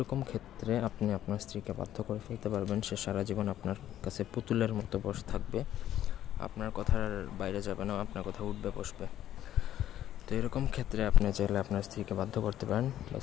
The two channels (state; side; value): quieter; right; 11.9 dB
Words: ক্ষেত্রে আপনি আপনার স্ত্রীকে বাধ্য করে ফেলতে পারবেন। সে সারা জীবন আপনার কাছে পুতুলের মতো বসে থাকবে, আপনার কথার বাইরে যাবে না, আপনার কথা উঠবে বসবে। তো এরকম ক্ষেত্রে আপনি চাইলে আপনার স্ত্রীকে বাধ্য করতে পারেন বা